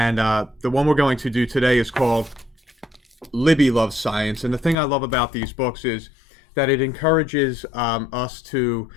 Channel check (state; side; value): drops out; right; at 4.8 s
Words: the one we're going to do today is called Libby Loves Science. And the thing I love about these books is that it encourages us to